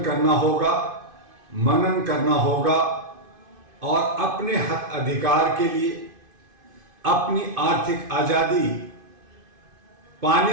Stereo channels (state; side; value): late; left; 2.5 ms